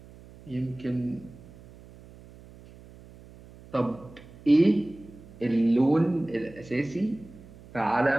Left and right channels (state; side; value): noise; right; hum, 21 dB below the sound